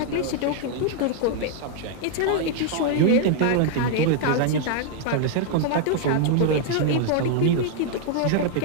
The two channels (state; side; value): different; both; correlation 0.00